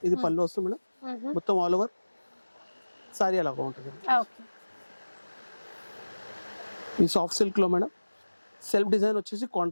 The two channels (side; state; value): both; inverted; correlation -1.00